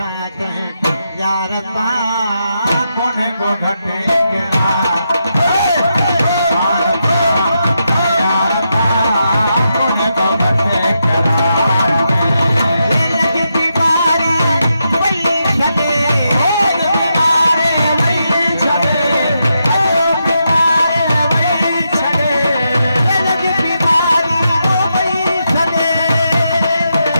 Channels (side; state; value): both; inverted; correlation -0.84